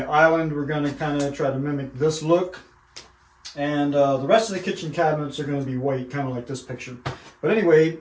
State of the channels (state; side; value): identical; both; correlation 1.00